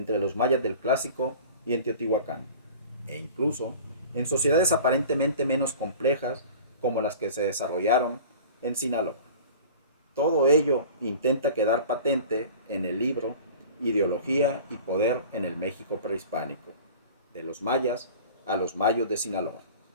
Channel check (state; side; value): inverted; both; correlation -0.41